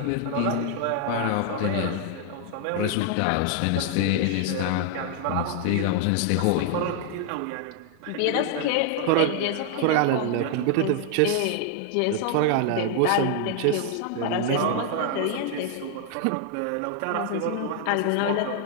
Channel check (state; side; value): different; both; correlation 0.00